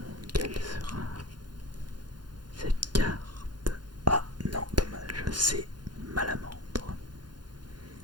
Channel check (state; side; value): late; left; 0.71 ms